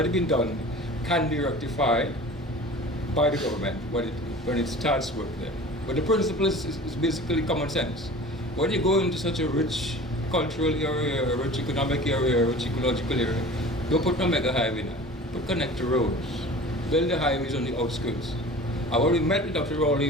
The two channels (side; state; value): both; normal; correlation 0.40